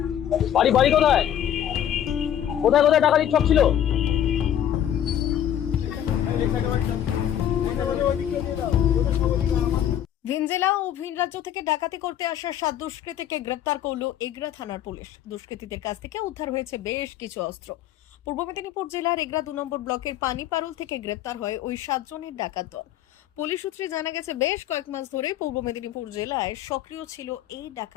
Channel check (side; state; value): right; quieter; 10.5 dB